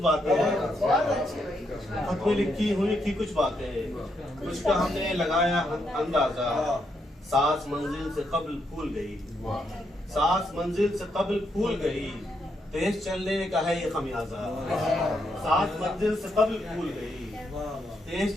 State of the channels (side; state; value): both; normal; correlation 0.79